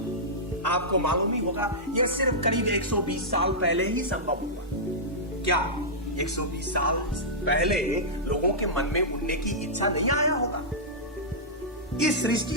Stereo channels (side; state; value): both; normal; correlation -0.12